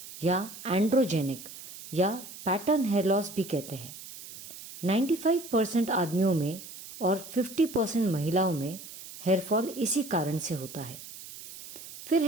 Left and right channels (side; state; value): right; noise; hiss, 14 dB below the sound